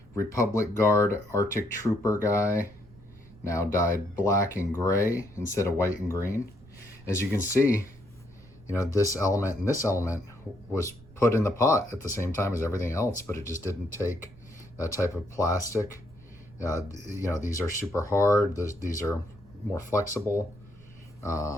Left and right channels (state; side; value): noise; right; rumble, 24 dB below the sound